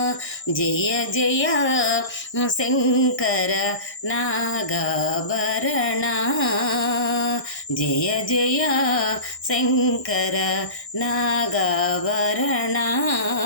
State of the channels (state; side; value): late; right; 1.6 ms